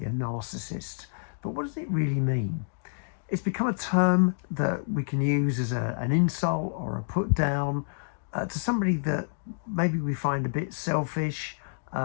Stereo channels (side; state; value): right; silent; digital silence